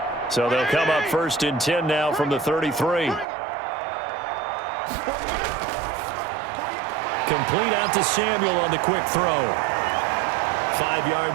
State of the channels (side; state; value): left; drops out; at 3.2 s